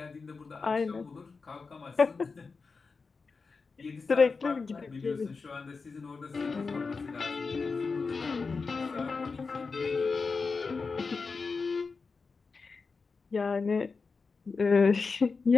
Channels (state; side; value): quieter; right; 4.6 dB